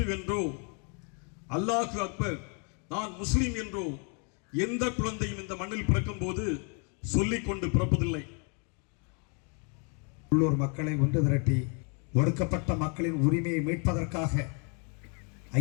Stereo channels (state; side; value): quieter; right; 37.6 dB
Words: என்றோ, அல்லாஹு அக்பர் நான் முஸ்லீம் என்றோ எந்த குழந்தையும் இந்த மண்ணில் பிறக்கும் போது சொல்லிக் கொண்டு பிறப்பதில்லை. உள்ளூர் மக்களை ஒன்று திரட்டி ஒடுக்கப்பட்ட மக்களின் உரிமையை மீட்பதற்காக